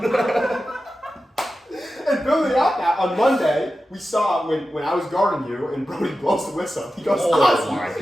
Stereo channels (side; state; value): both; normal; correlation 0.92